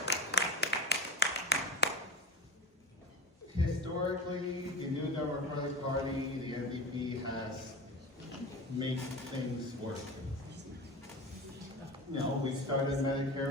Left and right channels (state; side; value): normal; both; correlation 0.28